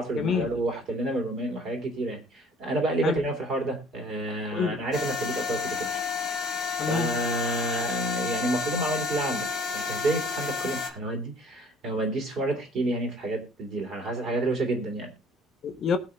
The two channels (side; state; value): both; normal; correlation 0.53